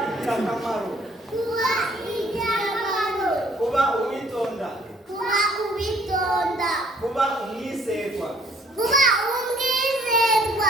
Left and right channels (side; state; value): both; normal; correlation 0.60